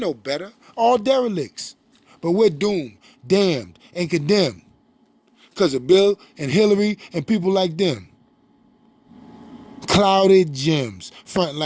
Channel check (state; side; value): identical; both; correlation 1.00